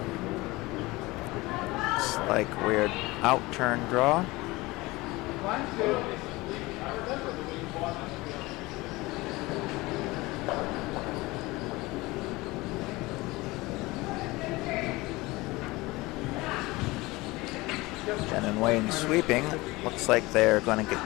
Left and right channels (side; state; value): right; quieter; 21.5 dB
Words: Looks like weird out-turn draw. Jen and Wayne sweeping. Looks like they're going to